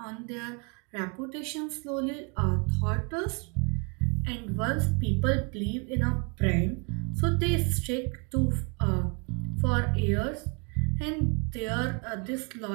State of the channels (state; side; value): quieter; left; 34.7 dB